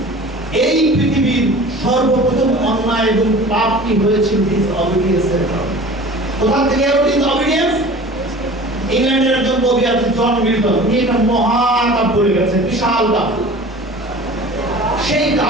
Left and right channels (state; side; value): normal; both; correlation 0.41